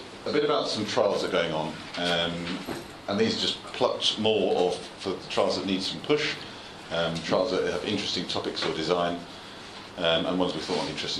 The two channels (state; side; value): identical; both; correlation 1.00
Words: a bit about some trials that are going on, and these are just plucked more of for the trials that need some push, trials that have interesting topics or design, and ones we thought might be